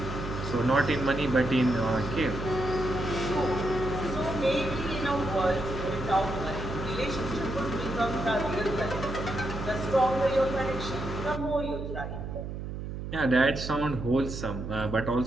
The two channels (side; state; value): right; noise; hum, 7 dB below the sound